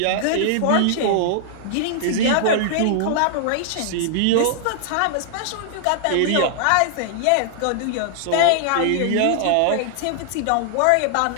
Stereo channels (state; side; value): different; both; correlation -0.01